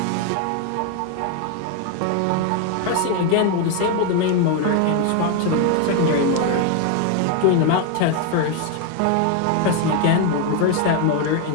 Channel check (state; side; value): different; both; correlation 0.01